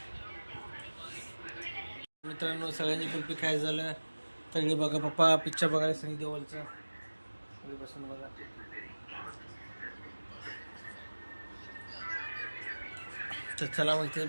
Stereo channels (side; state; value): both; inverted; correlation -1.00